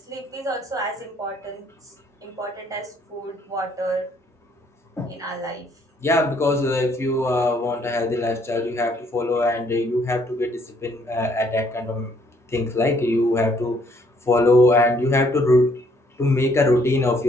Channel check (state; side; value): normal; both; correlation 0.66